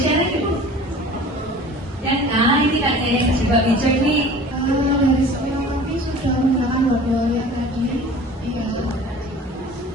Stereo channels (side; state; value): both; normal; correlation 0.43